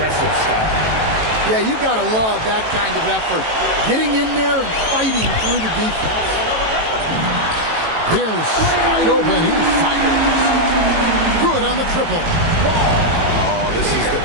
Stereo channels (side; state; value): left; late; 18 ms